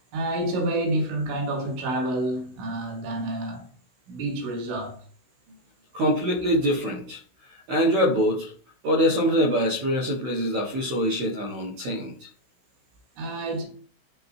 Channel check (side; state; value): left; late; 16 ms